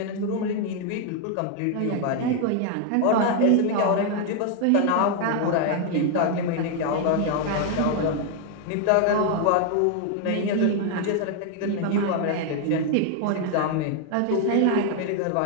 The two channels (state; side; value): different; both; correlation 0.00